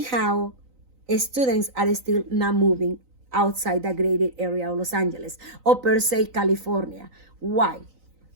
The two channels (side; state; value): left; late; 3.9 ms